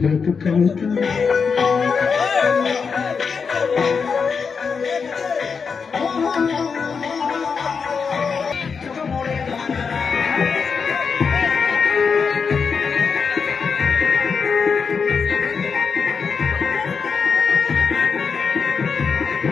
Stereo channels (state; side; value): quieter; right; 5.7 dB